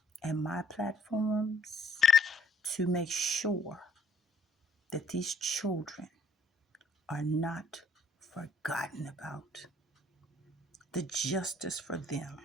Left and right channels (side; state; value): both; normal; correlation 0.63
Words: and my platforms to make sure that these children are not forgotten about. The justice for them